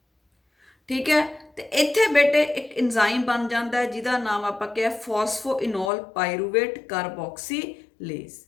ਠੀਕ ਹੈ। ਤੇ ਇੱਥੇ ਬੇਟੇ ਇੱਕ ਐਂਜ਼ਾਈਮ ਬਣ ਜਾਂਦਾ ਜਿਹਦਾ ਨਾਮ ਆਪਾਂ ਕਿਹਾ ਫਾਸਫੋਇਨੋਲ ਪਾਇਰੂਵੇਟ ਕਾਰਬੋਕਸੀਲੇਜ਼।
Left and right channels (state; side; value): drops out; right; at 5.9 s